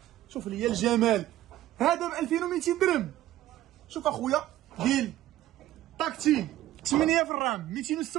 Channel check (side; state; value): left; quieter; 14.2 dB